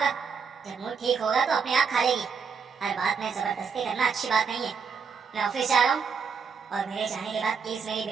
जब मूड ठीक होगा तो अपने आप खा लेगी। हर बात में जबरदस्ती करना अच्छी बात नहीं है। मैं ऑफिस जा रहा हूँ और मेरे जाने के बाद प्लीज मेरी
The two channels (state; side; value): quieter; left; 5.9 dB